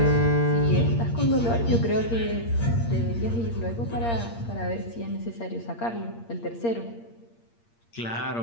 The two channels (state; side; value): late; right; 8.6 ms